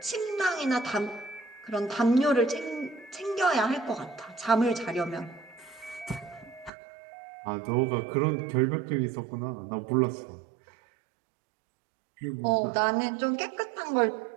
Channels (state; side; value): drops out; left; at 6.7 s